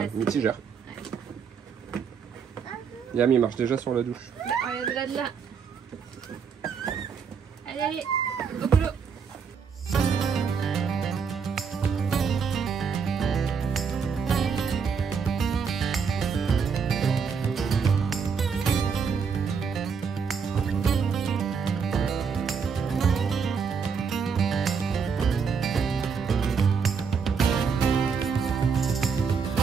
mitigeur. Yam, il marche déjà sur la douche. Bah, regarde là, de là. Allez, allez, au boulot.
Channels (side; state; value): left; quieter; 6.1 dB